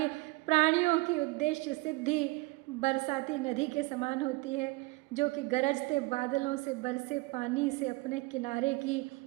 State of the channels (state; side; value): quieter; left; 23.3 dB